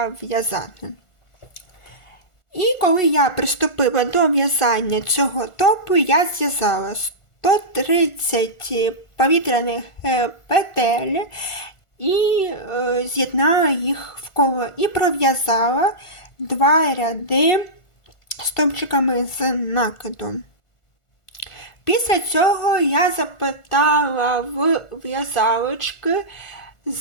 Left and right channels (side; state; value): right; late; 1.4 ms